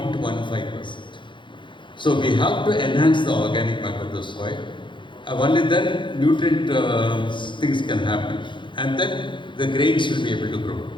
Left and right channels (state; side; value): late; right; 0.23 ms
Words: So we have to enhance the organic matter of the soil. Only then nutrient things can happen, and then the grains will be able to grow.